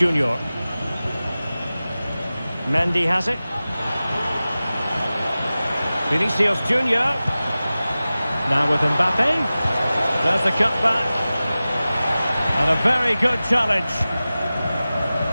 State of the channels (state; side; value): inverted; both; correlation -0.96